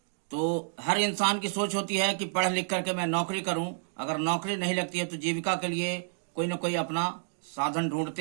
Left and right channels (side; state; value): left; silent; digital silence